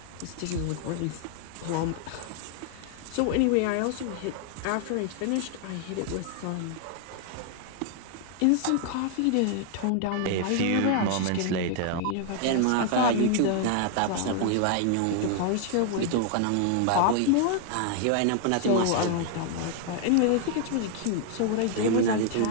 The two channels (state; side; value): different; both; correlation 0.00